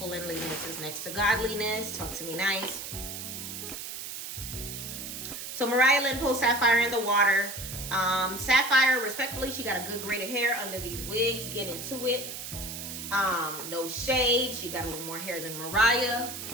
is next to godliness. Talk to me nice. So Mariah Lynn pulls Sapphire in the water. Sapphire, respectfully, she got a good grade of hair under these wigs. Get into it. No shade. She got a little more hair than Mariah.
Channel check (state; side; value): noise; right; hiss, 8 dB below the sound